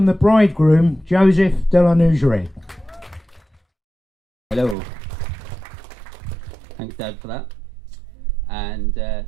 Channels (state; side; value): drops out; left; at 4.8 s